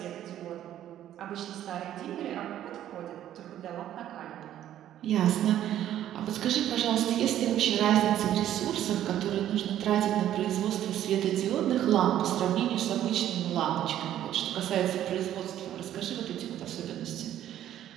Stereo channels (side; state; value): left; quieter; 11.7 dB